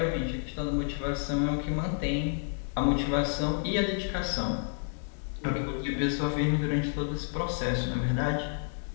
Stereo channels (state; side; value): silent; right; digital silence